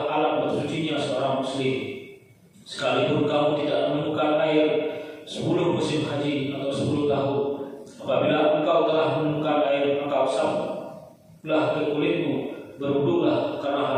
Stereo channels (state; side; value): identical; both; correlation 1.00